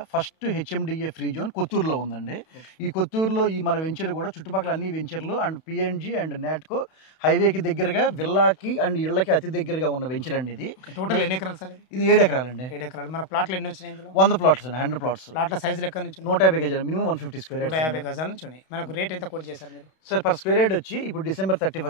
ఫస్ట్ హెచ్ఎండిఏ ఫ్రీ జోన్ కొత్తూరులో ఉందండి. ఈ కొత్తూరులో ఈ మన వెంచర్ కూడా చుట్టుపక్కల అన్ని వెంచర్లు అండ్ పిఎన్జి అండ్ నాట్కో హైవేకి దగ్గరగా విల్లాకి అండ్ ఇళ్ళకి అతి దగ్గరగా ఉన్న వెంచర్ అండి ఇది. టోటల్ ఎన్ని ఎకరాలు సార్ ఇది? ఇది 7 ఎకరాలండి. 7 ఎకరాలు. మన ప్లాట్లు ఎన్ని వచ్చినాయి ఇందులో? 100 ప్లాట్స్ అండి, 100 ప్లాట్స్. ప్లాట్ల సైజులు ఎక్కడి నుంచి ఉన్నాయి? 150 గజాలు, మినిమం 150 స్క్వేర్ యార్డ్స్. 150 గజాల నుంచి ఉన్నాయి. మనకు రేట్ ఎంత కోట్ చేశారు మీరు? సార్ పర్ స్క్వేర్ యార్డ్ వచ్చి ఇప్పుడు డిసెంబర్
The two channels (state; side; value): late; right; 32 ms